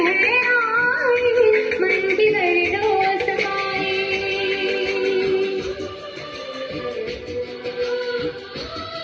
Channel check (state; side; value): identical; both; correlation 1.00